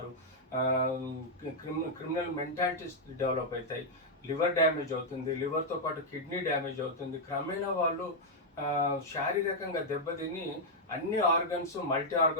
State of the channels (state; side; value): normal; both; correlation -0.03